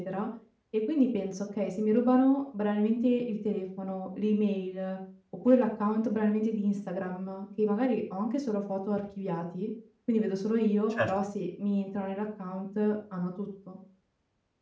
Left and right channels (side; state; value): both; identical; correlation 1.00